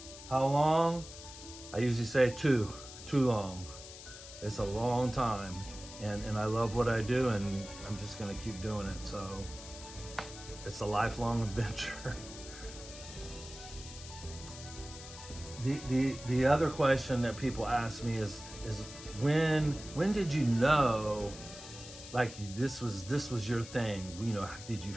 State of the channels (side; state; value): left; noise; hiss, 14 dB below the sound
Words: how long? I usually say too long. It's a long time, and I love what I do, and I'm just gonna keep doing it. So it's a lifelong adventure. The other question that people ask me is when did you know, like, this was your thing? Did you